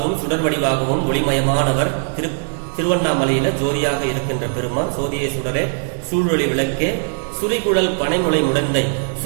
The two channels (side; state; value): left; silent; digital silence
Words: சுடர் வடிவாகவும் ஒளிமயமானவர். திருவண்ணாமலையில ஜோதியாக இருக்கின்ற பெருமான், சோதியை சுடரே சூழொளி விளக்கே சுரிகுழல் பனைமுளை முடந்தை,